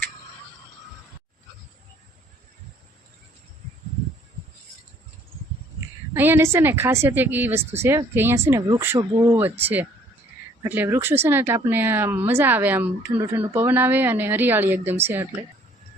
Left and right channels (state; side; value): normal; both; correlation 0.60